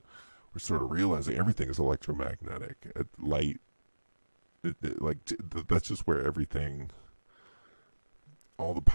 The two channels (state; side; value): inverted; both; correlation -1.00